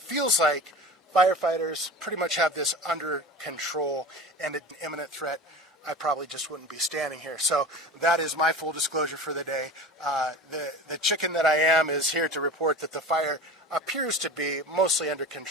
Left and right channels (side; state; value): both; normal; correlation 0.34